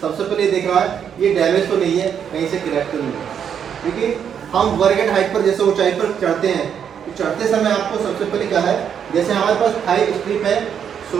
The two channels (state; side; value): quieter; left; 8.1 dB